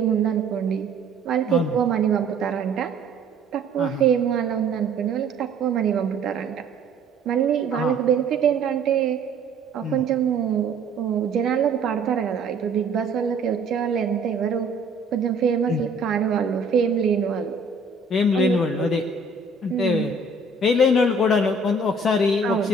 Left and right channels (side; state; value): left; quieter; 3.3 dB